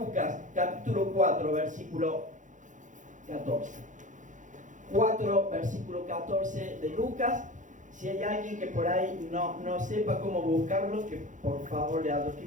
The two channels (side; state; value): left; late; 0.36 ms